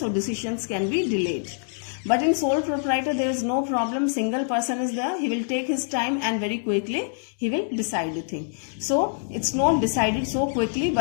So decisions can be delayed. But in sole proprietor, there is no problem. Single person is there. He will take his time and very quickly he will decide the thing. So it's not decided so quickly,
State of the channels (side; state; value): right; silent; digital silence